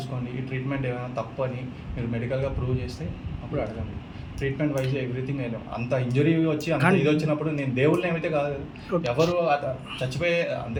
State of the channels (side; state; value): both; identical; correlation 1.00